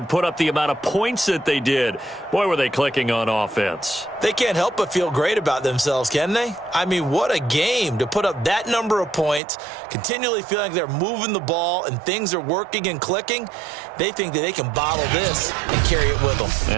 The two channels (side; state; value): left; drops out; at 9.4 s